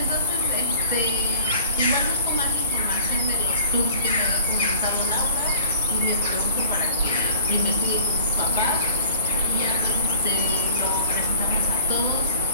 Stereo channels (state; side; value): inverted; both; correlation -0.46